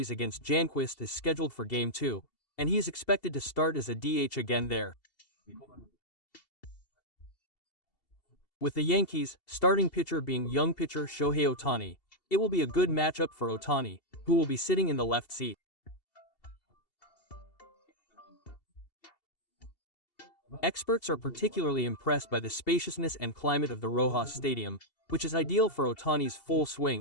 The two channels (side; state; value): right; late; 2.7 ms